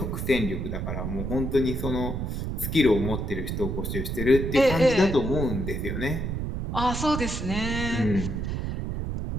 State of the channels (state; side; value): noise; right; rumble, 3 dB below the sound